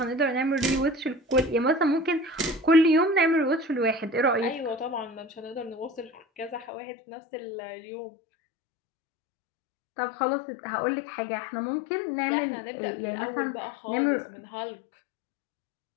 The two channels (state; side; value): drops out; right; at 6.7 s